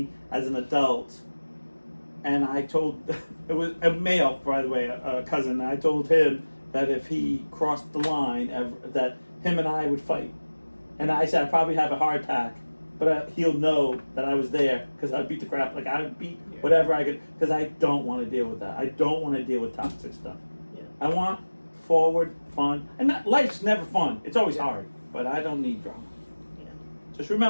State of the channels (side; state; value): both; inverted; correlation -1.00